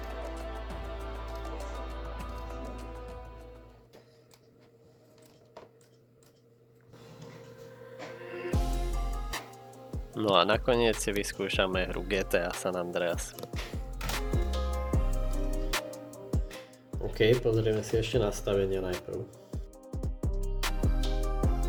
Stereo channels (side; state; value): both; identical; correlation 1.00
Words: No a nakoniec si vyskúšame hru GTA San Andreas. OK, pozrieme si ešte nastavenia najprv.